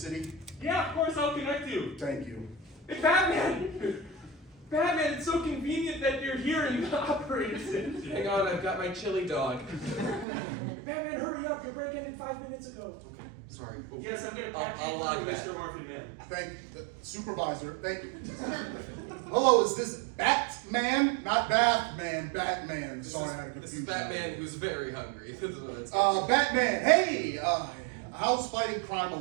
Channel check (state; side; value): drops out; left; at 10.2 s